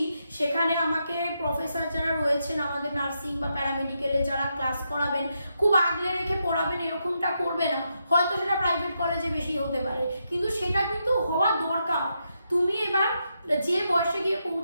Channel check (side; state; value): both; inverted; correlation -0.82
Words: সেখানে আমাকে প্রফেসর যারা রয়েছেন আমাদের নার্সিং বা প্যারামেডিক্যালে যারা ক্লাস করাবেন, খুব আগলে রেখে পড়াবেন, এরকমটা করবে না। হয়তো সেটা প্রাইভেট কলেজে বেশি হতে পারে, কিন্তু সেটা কিন্তু হওয়া দরকার। তুমি এবার যে বয়সে গিয়ে